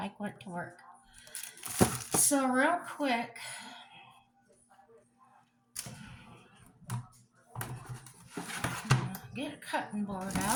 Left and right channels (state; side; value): identical; both; correlation 1.00